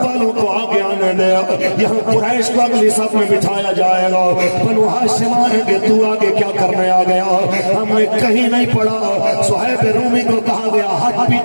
والوں کو آگے آنے دے یہاں قریش کو اگلی صف میں بٹھایا جائے گا بنو ہاشم آئیں گے تو آگے کیا کرنے آ گیا ہم نے کہیں نہیں پڑھا صہیب رومی کو کہا گیا ہٹ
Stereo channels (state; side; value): inverted; both; correlation -1.00